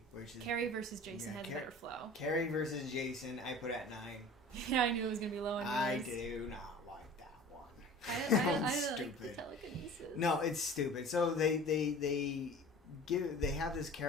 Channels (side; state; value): both; normal; correlation 0.42